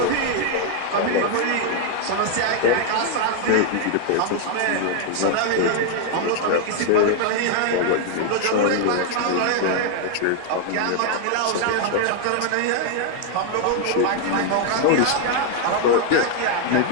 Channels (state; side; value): different; both; correlation 0.00